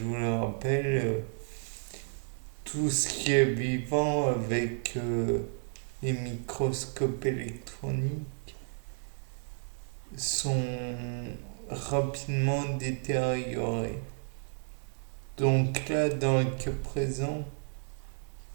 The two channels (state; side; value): silent; left; digital silence